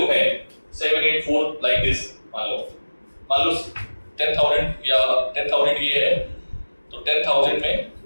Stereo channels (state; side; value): inverted; both; correlation -1.00